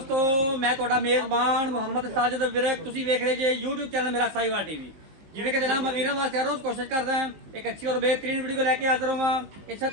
मैं ਤੁਹਾਡਾ ਮੇਜ਼ਬਾਨ ਮੁਹੰਮਦ ਸਾਜਿਦ ਵਿਰਕ। ਤੁਸੀਂ ਵੇਖ ਰਹੇ ਜੇ YouTube ਚੈਨਲ ਮੇਰਾ ਸਾਈਵਾਲ ਟੀਵੀ। ਜਿਵੇਂ ਕਿ ਜਨਾਬ ਮੈਂ ਵੀਰਾਂ ਵਾਸਤੇ ਹਰ ਰੋਜ਼ ਕੋਸ਼ਿਸ਼ ਕਰਦਾ ਹਾਂ ਇੱਕ ਅੱਛੀ ਔਰ ਬਿਹਤਰੀਨ ਵੀਡੀਓ ਲੈ ਕੇ ਹਾਜ਼ਰ ਹੋਵਾਂ। ਇਸੇ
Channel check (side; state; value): left; late; 19 ms